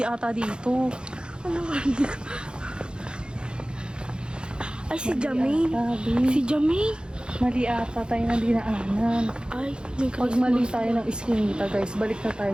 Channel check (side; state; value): left; late; 0.050 ms